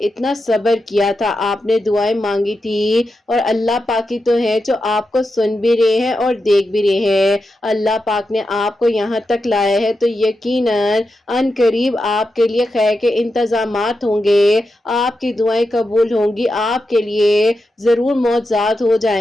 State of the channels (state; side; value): normal; both; correlation 0.88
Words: صبر کیا تھا، آپ نے دعائیں مانگی تھی، اور اللہ پاک کی تو ہے جو آپ کو سن بھی رہے ہیں اور دیکھ بھی رہے ہیں۔ اللہ پاک نے آپ کو یہاں تک لایا ہے تو یقیناً ان قریب آپ کے لیے خیر کے انتظامات ہوں گے، آپ کی دعائیں قبول ہوں گی، آپ کے لیے ضرور معجزات ہو